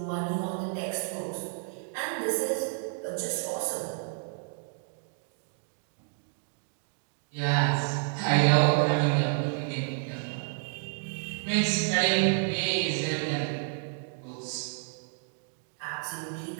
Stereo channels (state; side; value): silent; left; 58 dB below the other